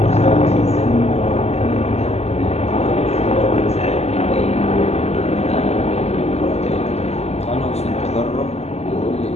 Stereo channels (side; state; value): right; late; 0.31 ms